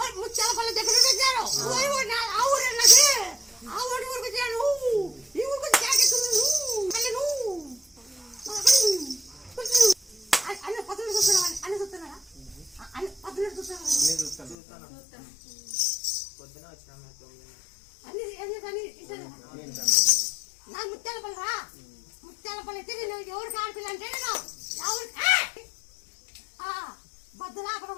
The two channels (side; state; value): right; drops out; at 14.6 s